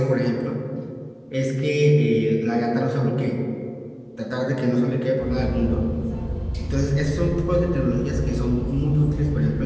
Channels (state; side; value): identical; both; correlation 1.00